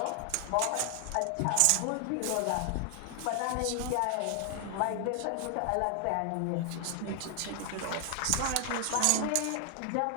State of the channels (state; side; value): different; both; correlation 0.00